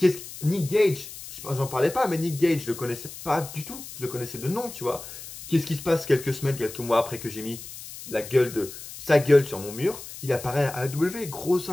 Nick Gage, j'en parlais pas, mais Nick Gage, je le connaissais pas du tout. Je le connaissais de nom, tu vois. Qu'est-ce qui se passe quelques semaines, quelques mois après que j'ai mis sa gueule sur mon mur? Il apparaît à AEW. Grosse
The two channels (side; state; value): left; noise; hiss, 13 dB below the sound